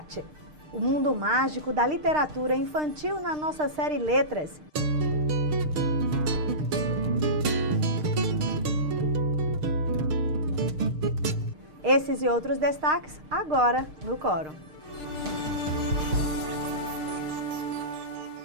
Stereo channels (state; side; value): late; left; 6.6 ms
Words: O mundo mágico da literatura infantil na nossa série Letras. Esses e outros destaques agora no Quórum.